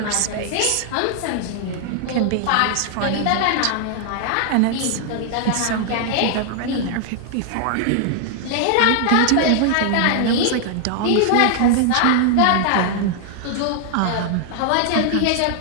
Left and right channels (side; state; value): both; different; correlation 0.00